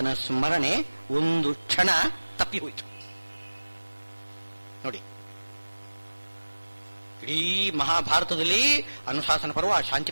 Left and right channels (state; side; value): inverted; both; correlation -1.00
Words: ಸ್ಮರಣೆ ಒಂದು ಕ್ಷಣ ತಪ್ಪಿ ಹೋಯಿತು. ನೋಡಿ, ಇಡೀ ಮಹಾಭಾರತದಲ್ಲಿ ಅನುಶಾಸನ ಪರ್ವ,